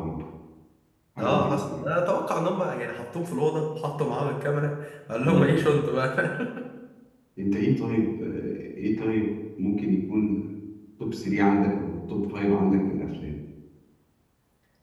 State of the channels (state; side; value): identical; both; correlation 1.00